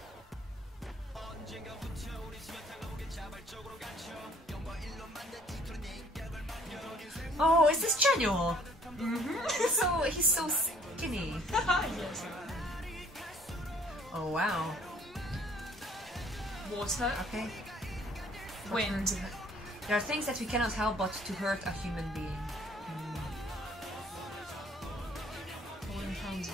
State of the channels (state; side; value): normal; both; correlation 0.59